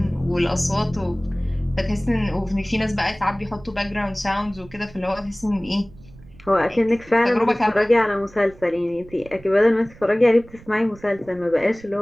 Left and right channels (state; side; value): noise; right; rumble, 22 dB below the sound